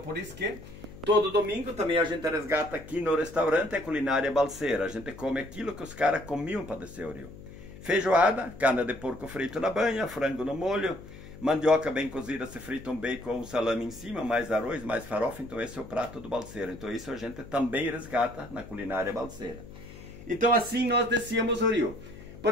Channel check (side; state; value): left; noise; hum, 16 dB below the sound